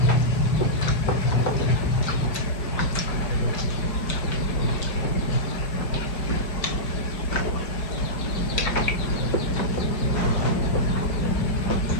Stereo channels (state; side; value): late; right; 5.2 ms